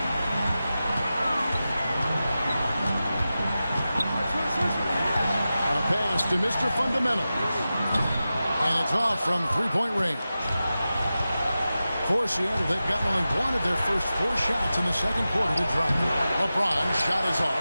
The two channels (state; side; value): inverted; both; correlation -0.93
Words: A pass to Mr. Fundamental. And it's off from three-point range. For Seattle, they've gotten only one of their first 4 shots in the second quarter to drop. LeBron's shot is